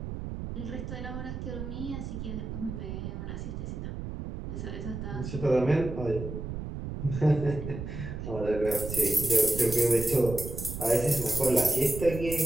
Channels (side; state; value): right; noise; rumble, 7 dB below the sound